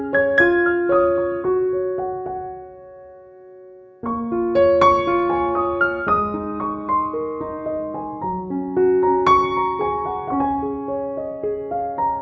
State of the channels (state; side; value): identical; both; correlation 1.00